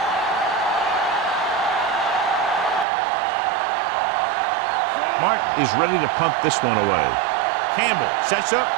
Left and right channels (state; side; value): drops out; left; at 2.9 s